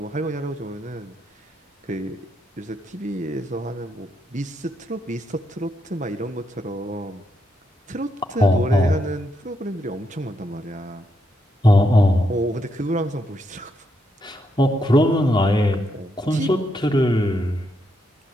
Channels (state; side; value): normal; both; correlation 0.79